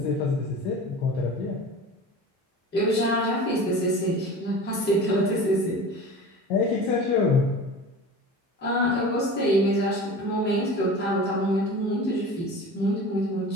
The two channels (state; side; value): normal; both; correlation 0.36